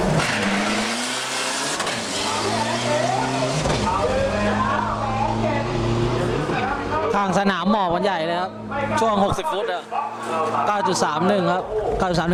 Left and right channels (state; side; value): identical; both; correlation 1.00